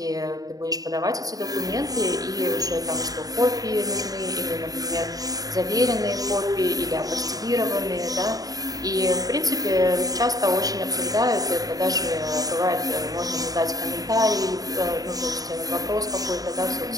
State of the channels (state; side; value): late; left; 0.18 ms